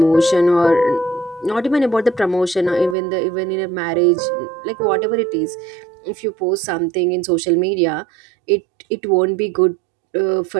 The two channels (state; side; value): drops out; left; at 3.0 s